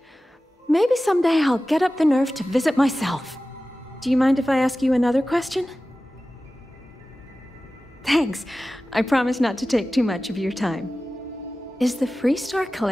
Maybe someday I'll get up the nerve to visit myself. Do you mind if I ask you another question? Thanks. I promise not to take too much of your time. Is the Freestar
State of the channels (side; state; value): both; normal; correlation 0.96